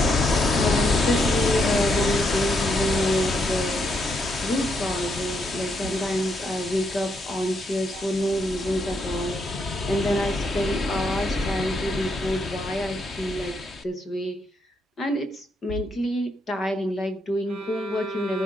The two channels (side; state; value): both; normal; correlation 0.78